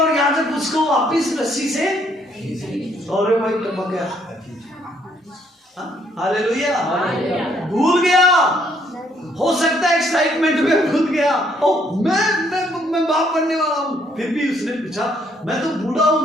यहां से उसको वापिस रस्सी से अरे भाई टपक गया। हालेलुया। भूल गया, हो सकता है एक्साइटमेंट में भूल गया, ओ मैं बाप बनने वाला हूं। फिर भी उसने पूछा मैं तो बूढ़ा हो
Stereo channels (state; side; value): normal; both; correlation 0.68